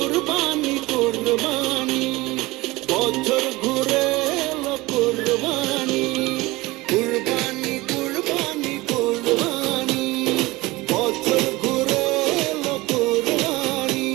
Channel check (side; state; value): left; quieter; 20.9 dB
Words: কুরবানি, বছর ঘুরে এলো কুরবানি, কুরবানি কুরবানি কুরবানি, বছর ঘুরে এলো কুরবানি।